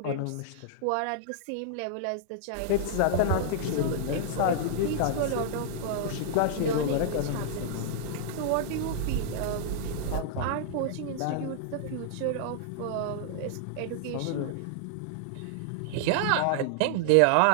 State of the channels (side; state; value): both; different; correlation -0.01